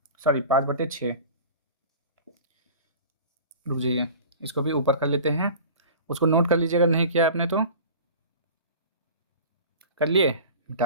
सॉरी 5/6, रुक जाइए, इसको भी ऊपर कर लेते हैं, उसको नोट कर लीजिएगा, नहीं किया आपने तो कर लिए,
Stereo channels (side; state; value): both; inverted; correlation -0.39